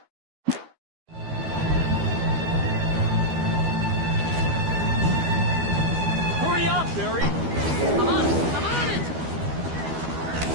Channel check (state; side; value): late; left; 12 ms